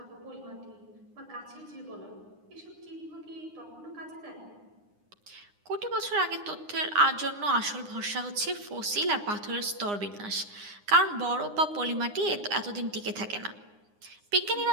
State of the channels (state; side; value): late; left; 9.7 ms